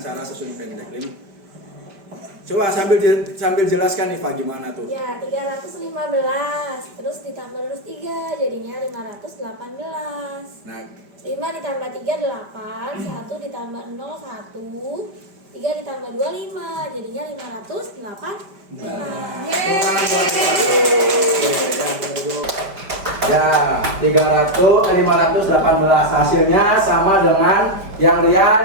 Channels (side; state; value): left; late; 5.1 ms